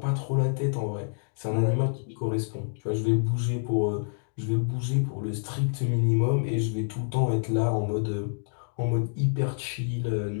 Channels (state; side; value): silent; right; 60 dB below the other